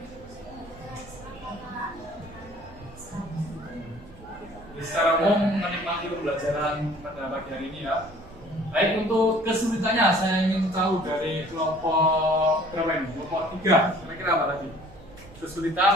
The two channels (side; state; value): right; noise; rumble, 20 dB below the sound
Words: Secara umum menikmati pembelajaran pada pagi hari ini ya. Baik, untuk kesulitannya saya ingin tahu dari kelompok berapa ini? Kelompok 3, kira-kira apa tadi?